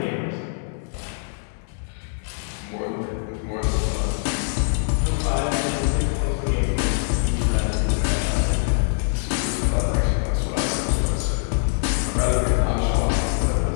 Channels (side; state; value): right; silent; 63 dB below the other